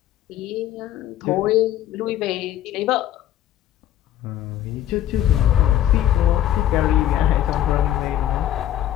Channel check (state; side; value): quieter; right; 12.1 dB